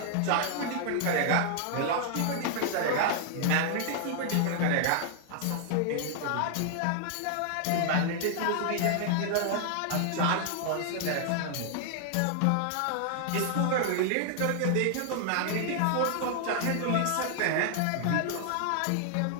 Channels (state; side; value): different; both; correlation 0.00